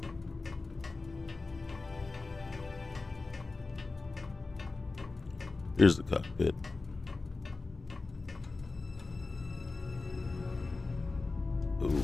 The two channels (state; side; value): quieter; right; 3.7 dB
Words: Here's the cockpit. Ooh.